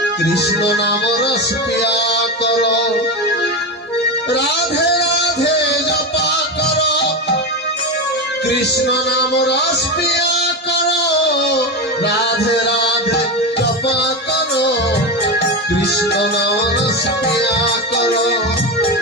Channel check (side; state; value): both; normal; correlation 0.17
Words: কৃষ্ণ নাম রস পিয়া করো। রাধে রাধে জপা করো, কৃষ্ণ নাম রস পিয়া করো। রাধে রাধে জপা করো, কৃষ্ণ নাম রস পিয়া করো।